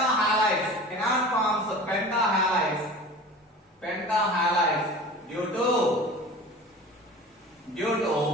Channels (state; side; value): normal; both; correlation 0.38